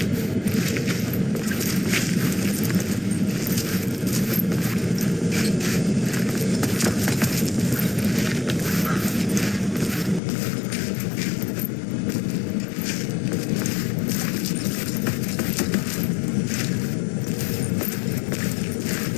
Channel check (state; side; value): drops out; right; at 10.2 s